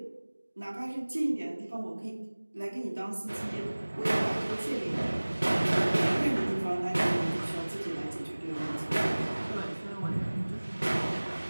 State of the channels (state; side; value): inverted; both; correlation -1.00